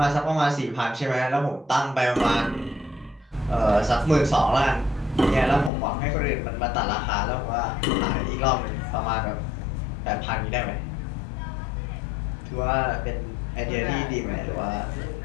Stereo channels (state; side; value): drops out; right; at 5.7 s